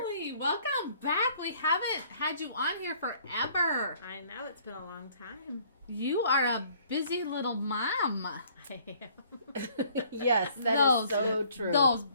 welcome back. We haven't had you on here forever. I know, it's been a long time. You are a busy little mom. I am. Yes, that is so true. Those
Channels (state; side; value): inverted; both; correlation -0.59